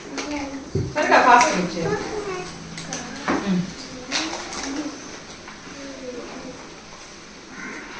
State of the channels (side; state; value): both; identical; correlation 1.00